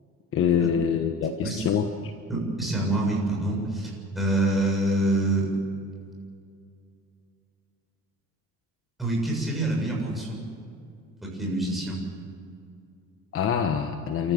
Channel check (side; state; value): both; normal; correlation 0.39